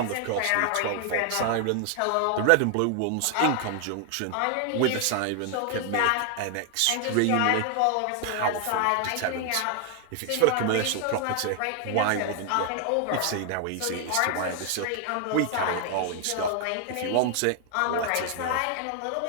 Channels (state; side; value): different; both; correlation 0.00